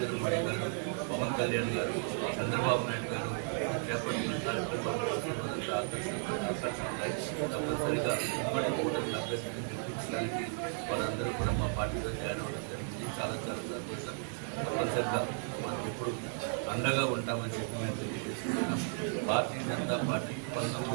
మోడీ గారు, పవన్ కళ్యాణ్ గారు, చంద్రబాబు నాయుడు గారు చేపట్టిన కార్యక్రమాలు వారందరూ కూడా మా పార్టీలో జాయిన్ అవ్వడం జరిగింది. చాలా సంతోషంగా ఇప్పుడు అండగా ఉంటామని చెప్పినట్టు భారతీయ జనతా పార్టీ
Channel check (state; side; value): silent; left; 55 dB below the other